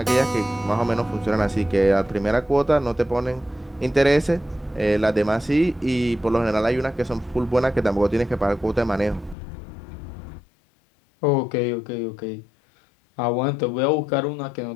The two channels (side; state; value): right; drops out; at 9.3 s